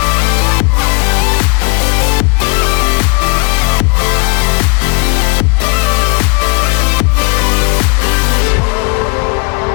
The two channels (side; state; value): right; quieter; 32.0 dB